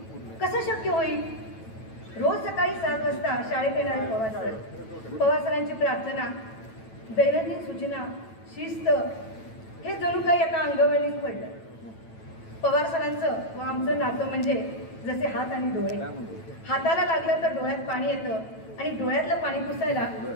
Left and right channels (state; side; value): late; right; 9.0 ms